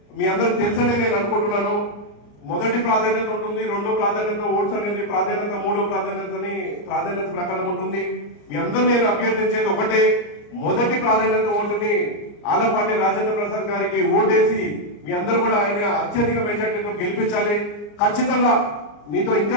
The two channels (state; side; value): late; right; 34 ms